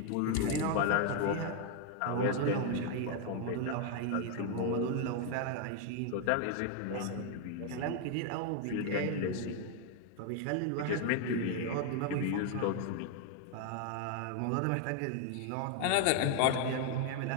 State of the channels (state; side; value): different; both; correlation 0.01